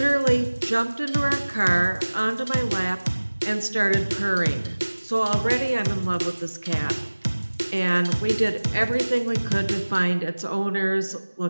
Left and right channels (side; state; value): both; inverted; correlation -1.00